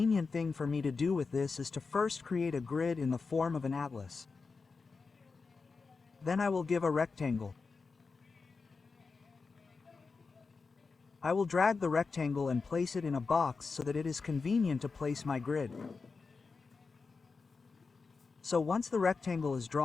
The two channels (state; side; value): quieter; right; 4.6 dB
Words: thing for me to do with this is to first create a grid in the form of an atlas. Then I will give a rectangle. I will drag the rectangle and place it in a box so that it is convenient to place my grid. So once the rectangle is